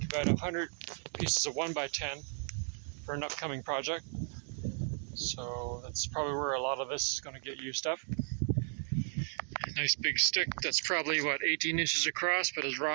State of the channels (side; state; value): left; silent; 55 dB below the other